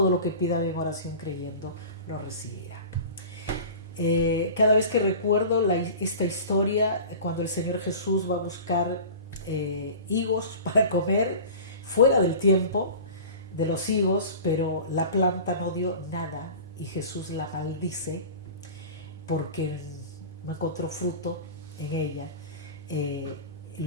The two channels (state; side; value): inverted; both; correlation -0.37